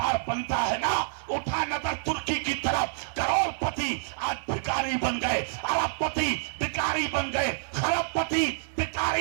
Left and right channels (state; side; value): silent; left; digital silence